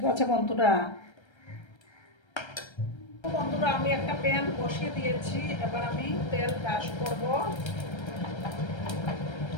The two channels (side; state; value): right; late; 1.3 ms